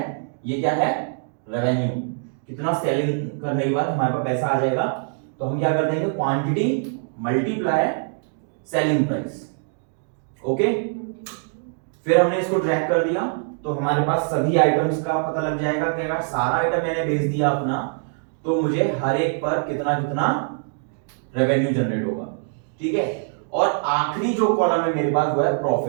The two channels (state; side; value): silent; left; digital silence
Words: ये क्या है, रेवेन्यू, कितना सेलिंग करने के बाद हमारे पास पैसा आ जाएगा। तो हम क्या कर देंगे, quantity multiply selling price, okay. फिर हमने इसको ड्रैग कर दिया तो हमारे पास सभी आइटम्स का पता लग जाएगा कि अगर सारा आइटम मैंने बेच दिया अपना तो मुझे हर एक पर कितना कितना रेवेन्यू जनरेट होगा, ठीक है। और आखिरी जो कॉलम है मेरे पास वो है